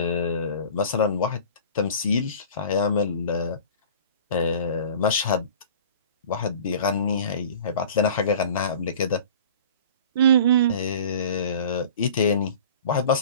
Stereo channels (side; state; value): both; inverted; correlation -0.41